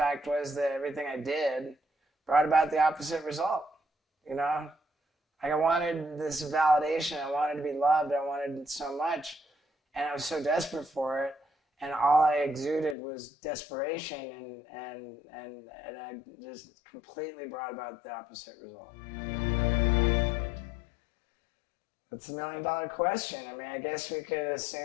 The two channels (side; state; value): right; drops out; at 13.0 s